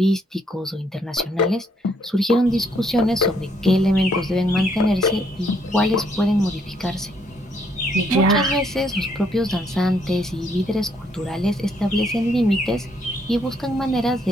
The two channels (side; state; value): both; normal; correlation 0.70